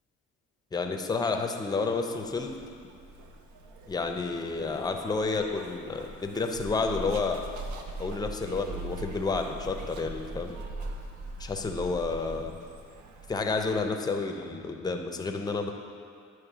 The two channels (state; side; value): quieter; right; 3.2 dB